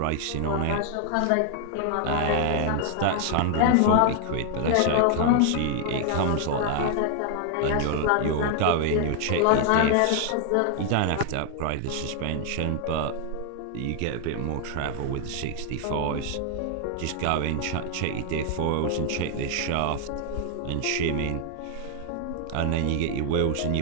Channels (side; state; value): both; different; correlation 0.00